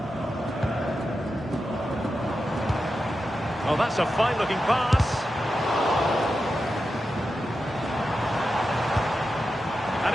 Oh, that's a fine-looking pass. And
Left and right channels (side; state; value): both; normal; correlation 0.90